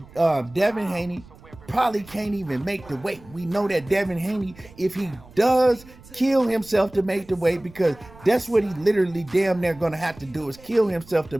Devin Haney probably can't even make the weight. We know that Devin Haney, if he does kill himself to make the weight, because that's what he literally damn near going to have to do, is kill himself to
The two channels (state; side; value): noise; right; rumble, 22 dB below the sound